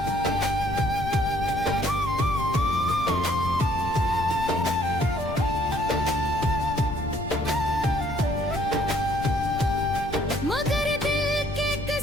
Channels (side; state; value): left; noise; rumble, 9 dB below the sound